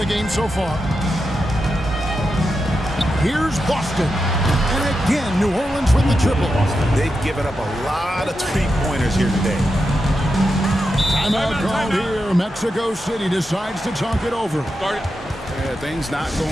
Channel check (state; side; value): normal; both; correlation 0.88